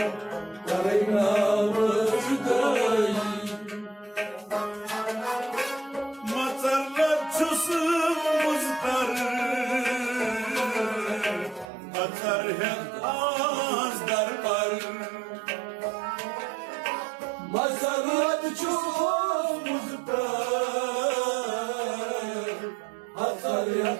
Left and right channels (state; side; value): drops out; left; at 11.7 s